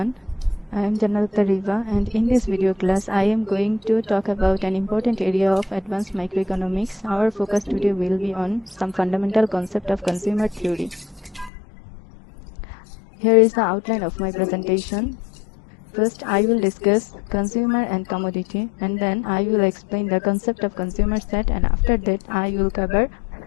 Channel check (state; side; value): drops out; right; at 11.5 s